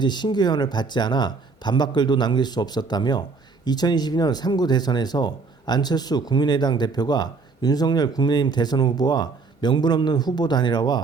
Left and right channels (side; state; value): left; quieter; 4.4 dB